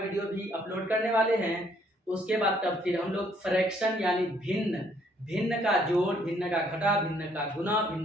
भी अपलोड करने वाले हैं। उसके बाद तब फिर हम लोग फ्रैक्शन यानी भिन्न, भिन्न का जोड़, भिन्न का घटा, भिन्न का गुना,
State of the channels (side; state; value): both; normal; correlation 0.66